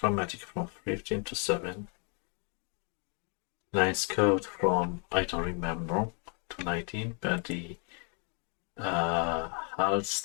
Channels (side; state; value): right; quieter; 38.3 dB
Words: from 15 to 7. Nice code from, I don't remember, to 19, but the